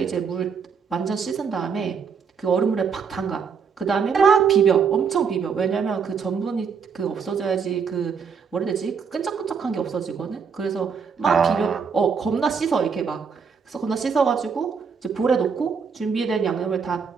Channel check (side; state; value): left; quieter; 6.1 dB